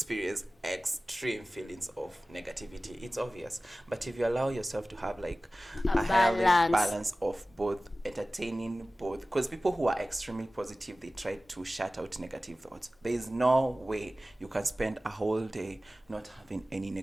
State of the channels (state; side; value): normal; both; correlation 0.97